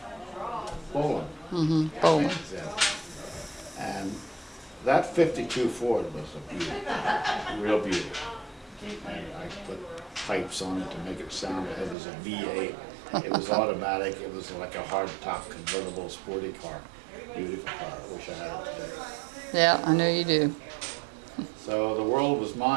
Boland. Boland. Yeah. And that 52 Ford was a beauty, real beauty. And I put pipes on it to make it sound, it was a V8. It was automatic, it was like a hard-top convertible sporty car. Beautiful car, I wish I had it today. Yeah, I know you do. So the world was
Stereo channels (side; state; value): left; drops out; at 12.0 s